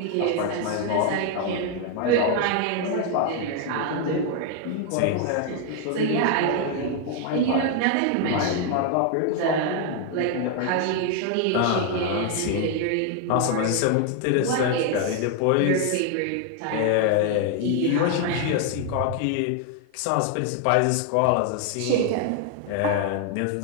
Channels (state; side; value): different; both; correlation 0.00